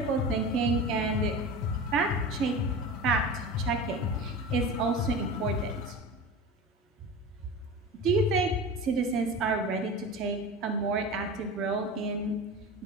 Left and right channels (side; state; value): both; normal; correlation 0.31